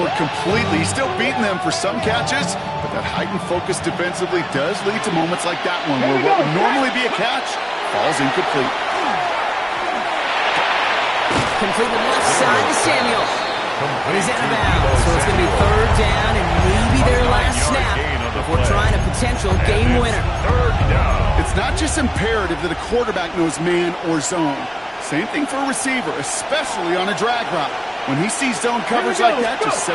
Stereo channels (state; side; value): identical; both; correlation 1.00